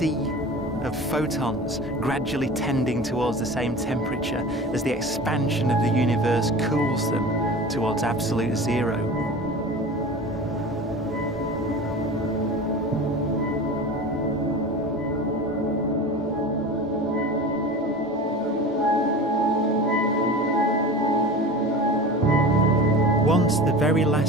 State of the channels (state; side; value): normal; both; correlation 0.34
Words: of photons gradually tending towards the same temperature as the expansion of the universe cools them towards absolute zero. Once the very